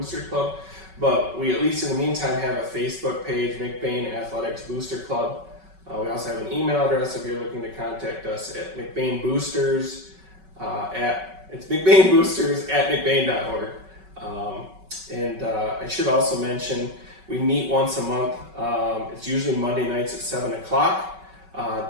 Club. But we, at least in the meantime, have a Facebook page, McBain Athletics Booster Club. We also have an email address if you're looking to contact us at McBain Boosters it's McBain Boosters at McBain.org. And I should also mention we meet once a month. It's usually Monday nights at 7 o'clock.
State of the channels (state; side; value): late; left; 5.3 ms